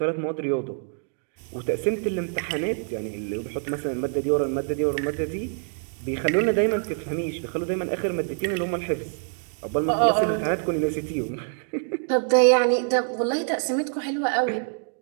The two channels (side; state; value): left; silent; 57 dB below the other